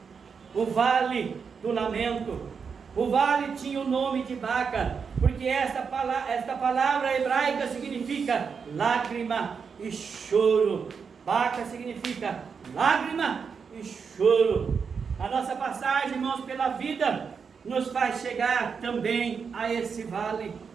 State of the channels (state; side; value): quieter; left; 6.0 dB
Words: o vale do lamento. O vale tinha o nome de Baca, porque esta palavra hebraica significa lágrima e choro. Baca significa lágrima e choro. A nossa passagem, irmãos, pela vida nos faz chegar também a esse vale.